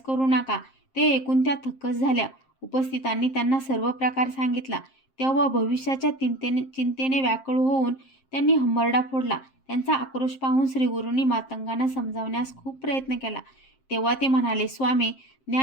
करू नका. ते ऐकून त्या थक्कच झाल्या. उपस्थितांनी त्यांना सर्व प्रकार सांगितला. तेव्हा भविष्याच्या चिंतेने व्याकुळ होऊन त्यांनी हंबरडा फोडला. त्यांचा आक्रोश पाहून श्रीगुरूंनी मातंगांना समजावण्यास खूप प्रयत्न केला. तेव्हा ते म्हणाले, स्वामी,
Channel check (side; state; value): right; late; 7.5 ms